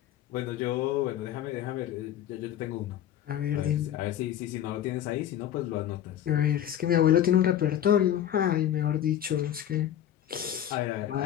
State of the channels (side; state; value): right; quieter; 10.9 dB